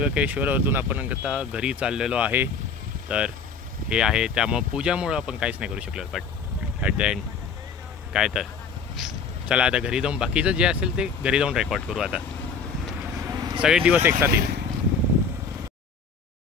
आपण आता घरी चाललेलो आहे. तर हे आहे, त्यामुळं पूजामुळं आपण काहीच नाही करू शकलो, बट ॲट द एंड काय तर चला आता घरी जाऊन बाकीचं जे असेल ते घरी जाऊन रेकॉर्ड करू. आता सगळे दिवस एक साथ येईल.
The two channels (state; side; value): quieter; right; 5.3 dB